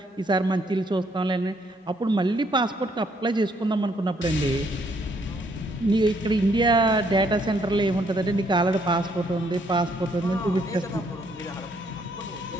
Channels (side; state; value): both; normal; correlation 0.69